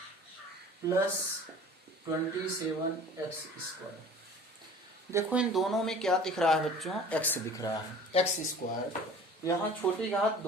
plus 27x square. देखो इन दोनों में क्या दिख रहा है बच्चों, x दिख रहा है, x स्क्वायर। यहाँ छोटी घात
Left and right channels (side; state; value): both; normal; correlation 0.44